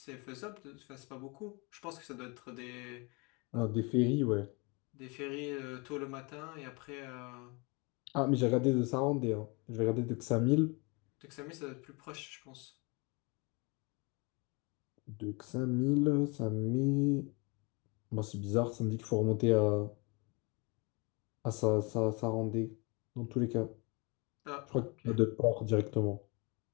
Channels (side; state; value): right; quieter; 29.4 dB